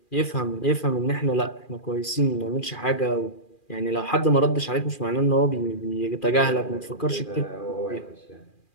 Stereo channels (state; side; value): late; right; 2.4 ms